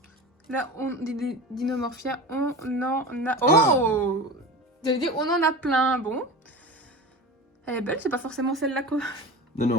Là, des dinomorphia, on en a... Oh! J'allais dire, on en a plein. Bon. Elle est belle, c'est pas forcément celle-là quoi.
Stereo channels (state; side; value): normal; both; correlation 0.31